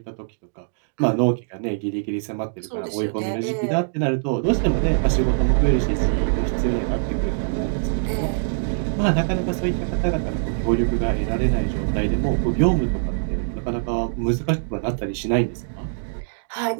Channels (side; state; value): left; silent; digital silence